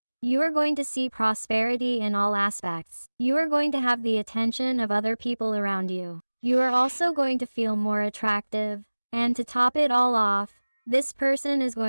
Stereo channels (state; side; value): inverted; both; correlation -1.00